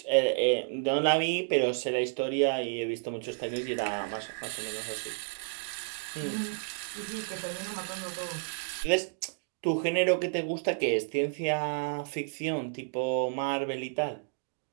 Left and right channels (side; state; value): left; silent; digital silence